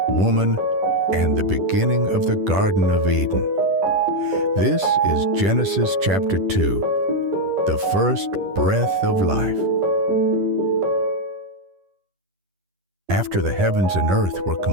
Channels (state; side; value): late; left; 10 ms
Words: woman, and the beginning of the Garden of Eden. This is Genesis chapter 2, the first breath of life. After the heavens and earth were